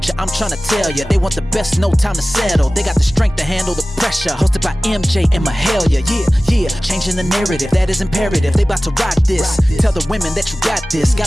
I'm tryna tell ya. They want the best, no time to settle. They got the strength to handle the pressure. Hosted by MJ and Mahalia. Yeah, changing the narrative, that is imperative. They about to rock this. Tell the women that you got this.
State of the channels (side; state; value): both; normal; correlation 0.97